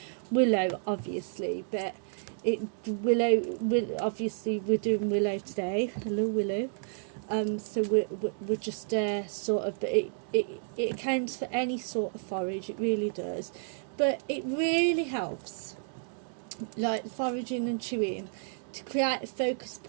willow obviously, but willow obviously we're doing willow today. Hello willow. So we're just sort of, but it accounts for any sort of forage, it really does, but it really helps like foraging and chewing to create a focus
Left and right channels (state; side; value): silent; left; 57 dB below the other